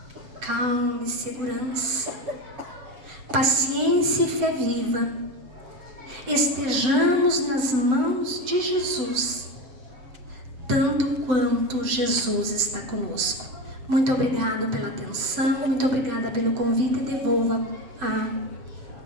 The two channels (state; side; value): late; left; 7.8 ms